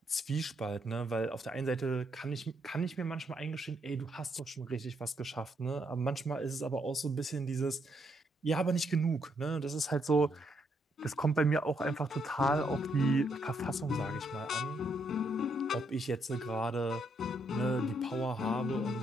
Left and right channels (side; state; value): both; normal; correlation 0.75